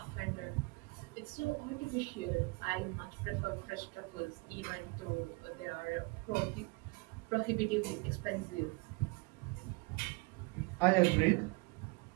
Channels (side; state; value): left; quieter; 27.2 dB